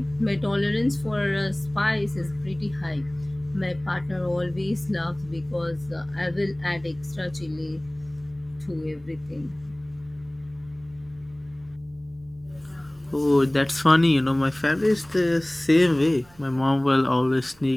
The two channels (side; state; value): right; noise; rumble, 28 dB below the sound